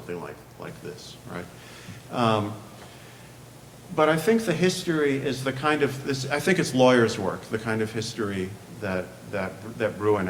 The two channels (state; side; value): identical; both; correlation 1.00